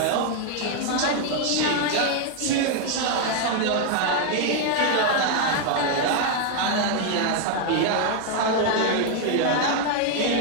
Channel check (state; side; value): different; both; correlation 0.00